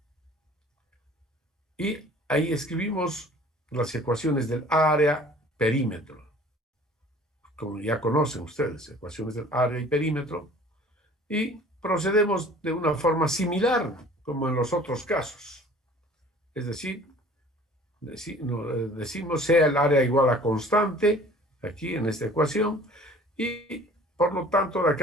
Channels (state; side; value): normal; both; correlation 0.49